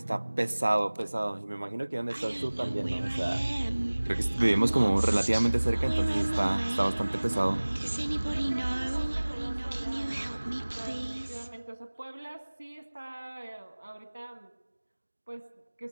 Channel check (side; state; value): both; inverted; correlation -1.00